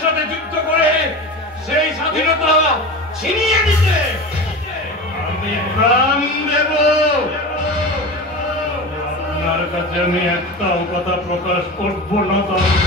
সাথে যুদ্ধ করে সেই স্বাধীনতা ছিনিয়ে দিতে আমি প্রাণ দেব। আপনার কাছে আমি একটাও কথা প্রকাশ করব না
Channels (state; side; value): normal; both; correlation 0.29